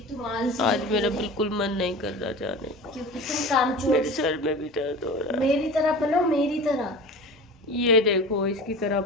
तुम आलसी आज मेरा बिल्कुल मन नहीं कर रहा जाने का। क्योंकि तुम कामचोर। मेरे सर में भी दर्द हो रहा है। मेरी तरह बनो, मेरी तरह। ये देखो, इसकी तरह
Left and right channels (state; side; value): normal; both; correlation 0.35